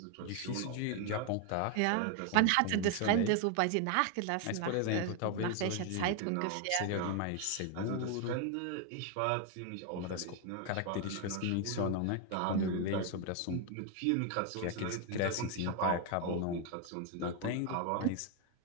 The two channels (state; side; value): different; both; correlation 0.01